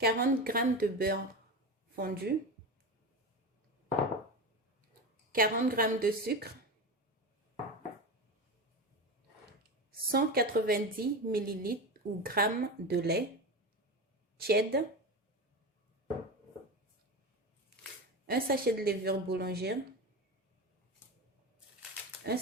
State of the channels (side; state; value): both; normal; correlation 0.23